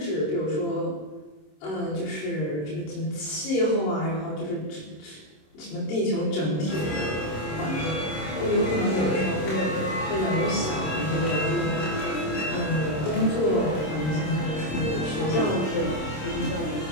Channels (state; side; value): late; right; 26 ms